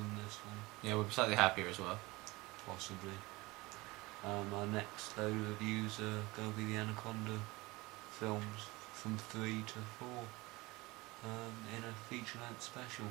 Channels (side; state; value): left; quieter; 22.2 dB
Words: this one. Yeah, we're slightly happier as well. Possibly. Our next load of reviews are going to be the Anaconda films from 3 to 4 in a feature-length special.